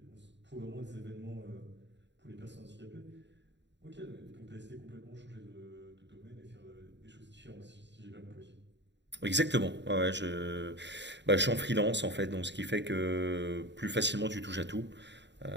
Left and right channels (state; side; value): late; left; 0.52 ms